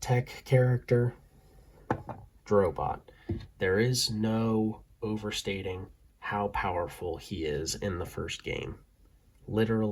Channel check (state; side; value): identical; both; correlation 1.00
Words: character, Drobot. There is no overstating how powerful he is in the first game.